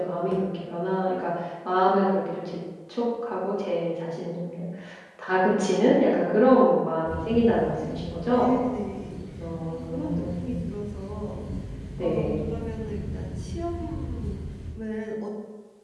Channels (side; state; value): both; identical; correlation 1.00